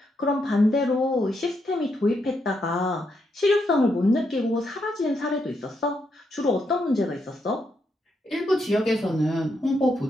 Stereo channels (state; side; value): normal; both; correlation 0.80